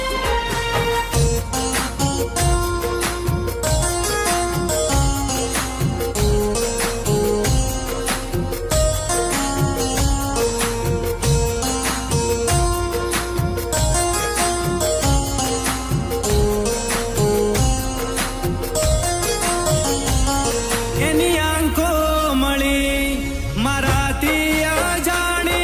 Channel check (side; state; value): both; identical; correlation 1.00